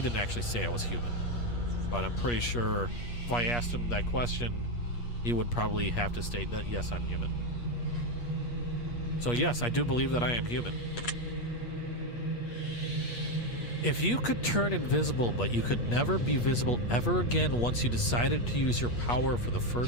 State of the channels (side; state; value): right; late; 8.4 ms